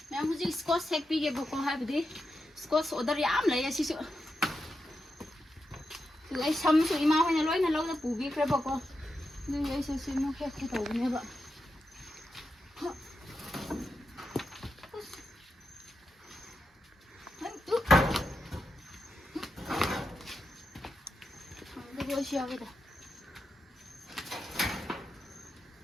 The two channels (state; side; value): normal; both; correlation 0.87